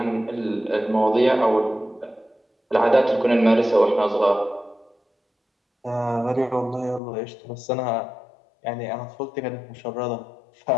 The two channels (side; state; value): right; drops out; at 7.0 s